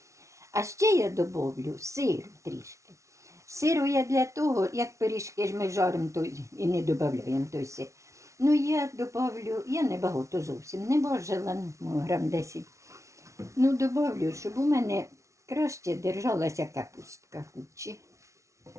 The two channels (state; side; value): late; left; 0.14 ms